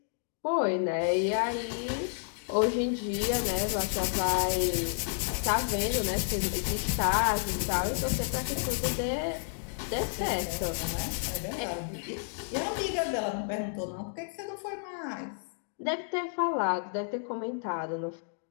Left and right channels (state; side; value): silent; right; digital silence